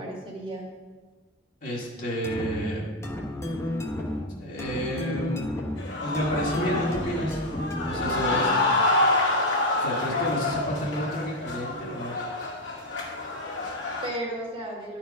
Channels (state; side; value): normal; both; correlation 0.06